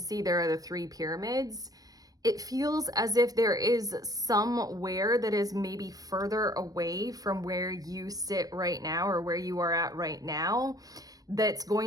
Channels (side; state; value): left; late; 0.18 ms